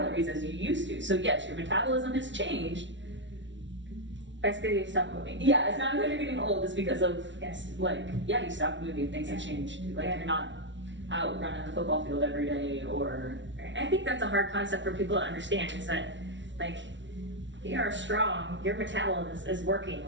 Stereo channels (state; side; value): late; left; 0.54 ms